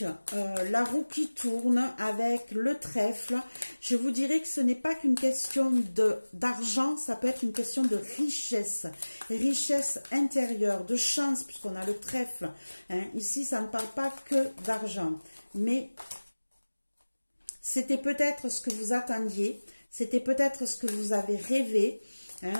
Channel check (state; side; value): inverted; both; correlation -1.00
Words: la roue qui tourne, avec le trèfle. Je vous dirais que ce n'est pas qu'une question d'argent, ça peut être une question de richesse. Richesse intérieure, de chance, puisqu'on a le trèfle. Hein. Ici, ça ne parle pas que d'argent. Mais c'était peut-être ce que vous attendiez. C'était peut-être ce que vous avez rêvé. Hein.